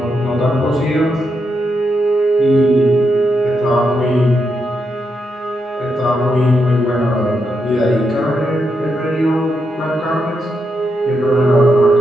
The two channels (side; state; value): both; normal; correlation 0.83